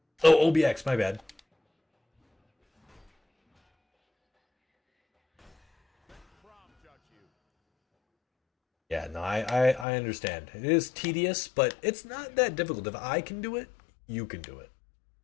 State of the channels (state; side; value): drops out; right; at 9.9 s